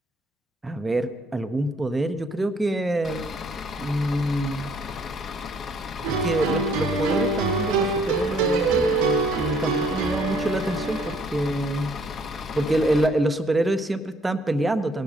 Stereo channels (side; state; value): both; normal; correlation 0.63